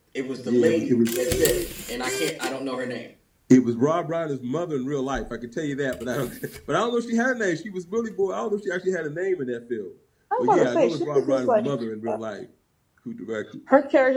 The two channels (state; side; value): identical; both; correlation 1.00